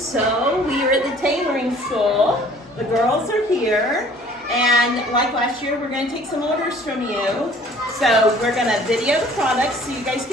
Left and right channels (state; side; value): normal; both; correlation 0.53